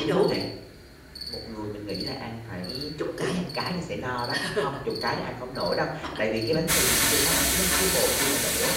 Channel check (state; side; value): identical; both; correlation 1.00